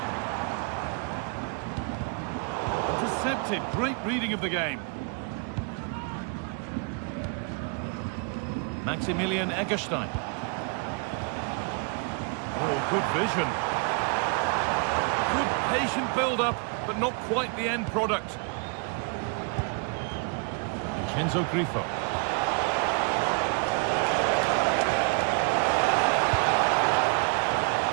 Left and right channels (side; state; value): left; quieter; 36.7 dB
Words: Intercepted, great reading of the game. Maximilian Eggestein. Oh, good vision. Good patient build-up, but not quite the end product. Vincenzo Grifo.